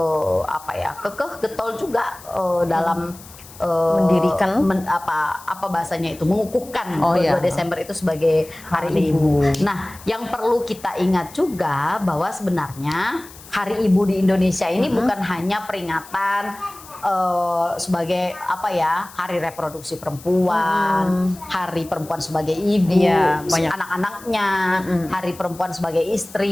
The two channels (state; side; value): noise; left; hiss, 19 dB below the sound